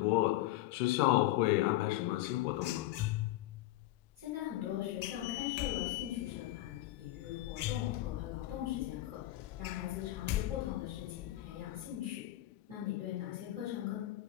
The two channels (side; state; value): right; quieter; 15.9 dB